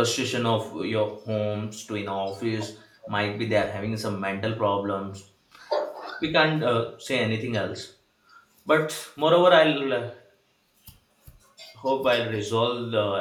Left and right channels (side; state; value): both; identical; correlation 1.00